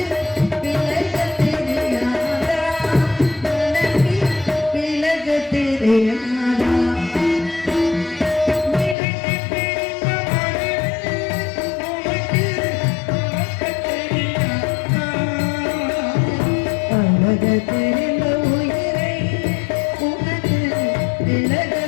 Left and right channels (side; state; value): right; drops out; at 9.0 s